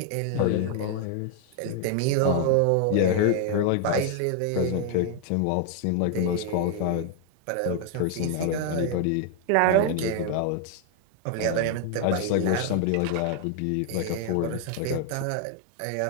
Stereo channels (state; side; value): different; both; correlation 0.00